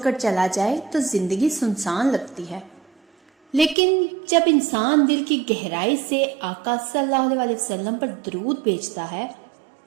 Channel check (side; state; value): left; drops out; at 3.8 s